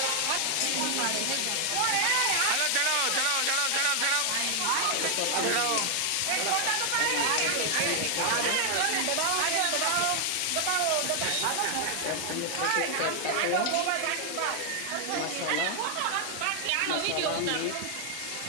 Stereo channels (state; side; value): different; both; correlation 0.00